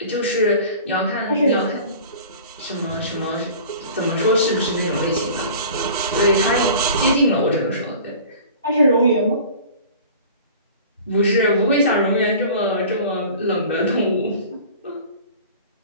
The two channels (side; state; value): both; inverted; correlation -0.42